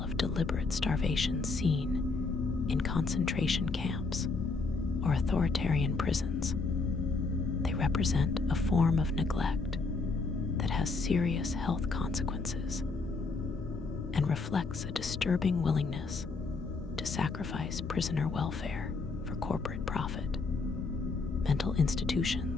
of deliberate starvation seen in concentration camps or authoritarian prisons, they represent a form of neglect that has serious health consequences and reflects a disturbing willingness to sacrifice prisoner welfare for corporate profit. Mental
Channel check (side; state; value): right; quieter; 4.0 dB